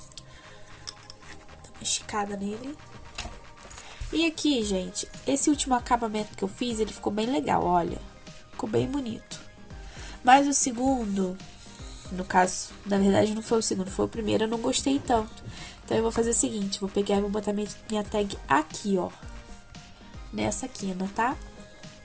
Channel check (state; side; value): identical; both; correlation 1.00